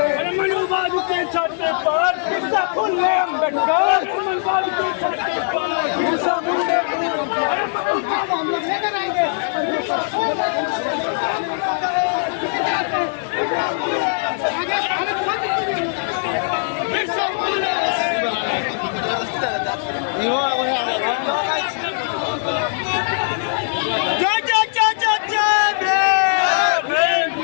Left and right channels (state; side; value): silent; right; digital silence